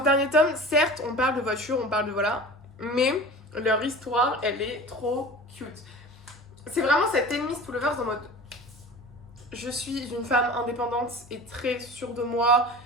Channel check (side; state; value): both; normal; correlation 0.38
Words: ce dernier tome, certes, on parle de voiture, on parle de voilà, mais leur histoire, elle est trop cute. C'est vraiment cette enemies to lovers en mode je suis une femme indépendante et très sûre de moi.